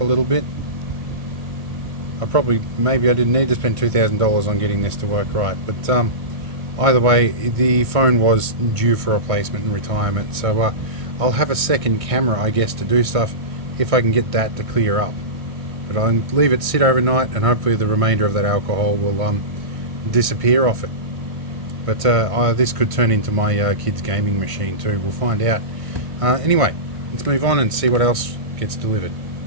little bit. Maybe I didn't need to spend $2,000 on getting this to work right, but either way, the phone was due for replacement and retirement, so I'll have a second camera, I guess, to do stuff if I can get that to clear up. But I'll leave it sit overnight, and hopefully the remainder of that alcohol will disappear off it. But this could turn into my kids' gaming machine too. We'll find out. Anyway, let's move on and see what else gets delivered.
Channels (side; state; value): left; late; 1.5 ms